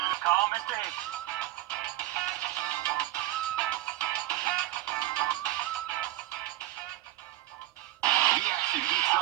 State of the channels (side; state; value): left; quieter; 16.1 dB